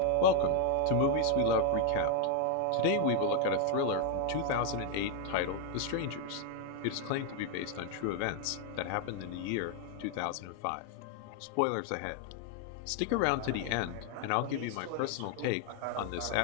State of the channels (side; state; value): both; different; correlation 0.00